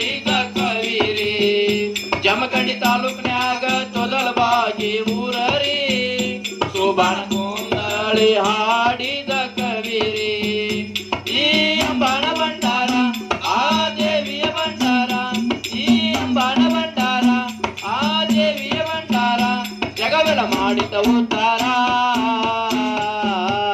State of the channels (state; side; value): identical; both; correlation 1.00